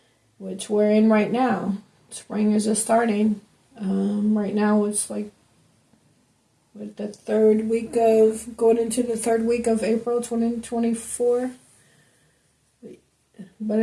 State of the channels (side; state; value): both; identical; correlation 1.00